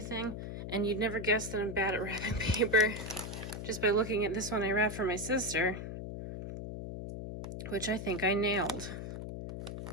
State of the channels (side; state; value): left; noise; hum, 7 dB below the sound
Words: And you'd never guess that I'm bad at wrapping paper just by looking at this one I wrapped for my sister, which I think I nailed.